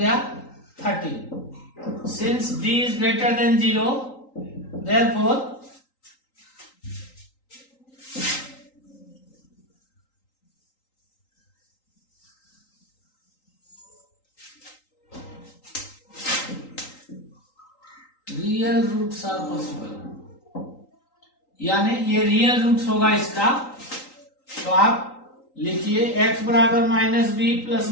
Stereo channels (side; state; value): right; late; 3.9 ms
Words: 13। Since d is greater than 0, therefore real roots are possible, यानी ये रियल रूट्स होगा इसका। तो आप लिखिए x बराबर -b plus